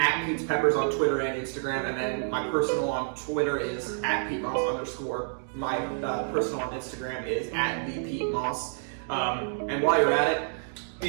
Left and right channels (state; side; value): silent; left; digital silence